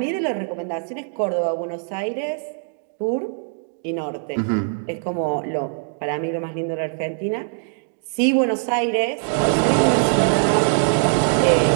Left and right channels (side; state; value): left; silent; 59 dB below the other